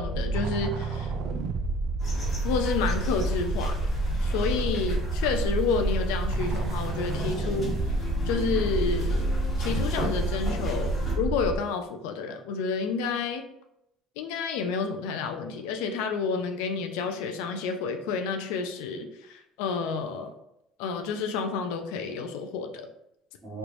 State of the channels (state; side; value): normal; both; correlation 0.43